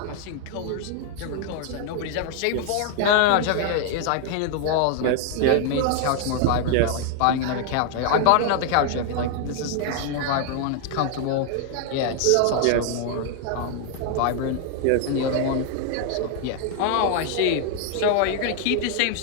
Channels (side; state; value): both; different; correlation 0.00